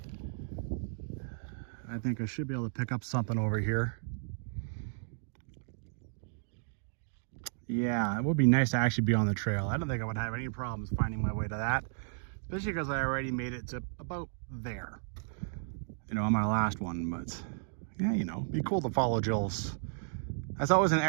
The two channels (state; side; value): silent; left; digital silence